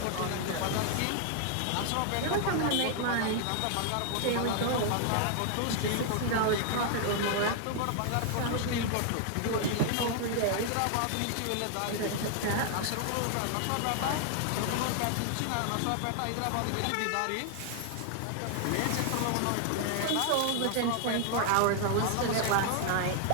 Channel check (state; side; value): different; both; correlation 0.00